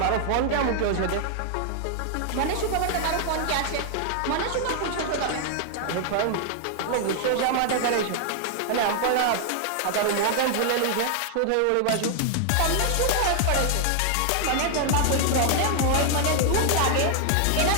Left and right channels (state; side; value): different; both; correlation 0.00